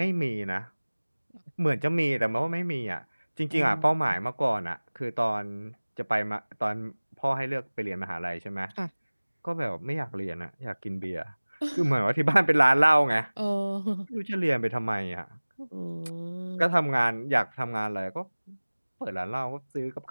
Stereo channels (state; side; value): inverted; both; correlation -1.00